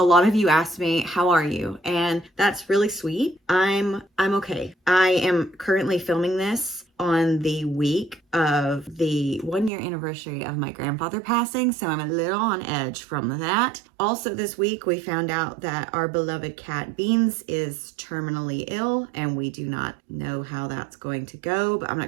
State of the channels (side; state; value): left; drops out; at 9.7 s